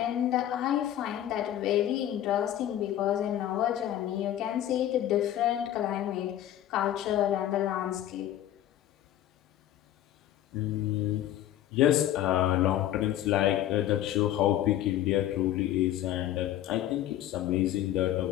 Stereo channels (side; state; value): right; quieter; 12.3 dB